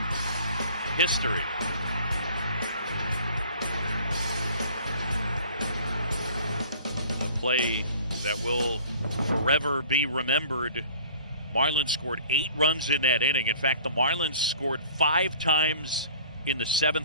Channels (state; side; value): inverted; both; correlation -0.48